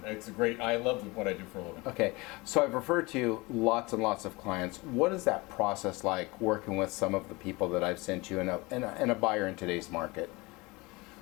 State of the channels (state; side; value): quieter; right; 23.9 dB